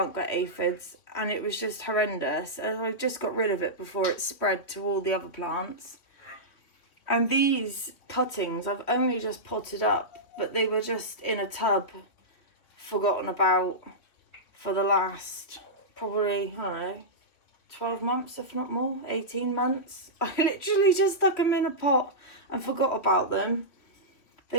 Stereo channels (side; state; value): right; late; 3.0 ms